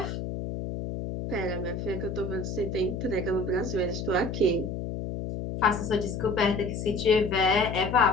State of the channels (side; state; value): left; noise; hum, 5 dB below the sound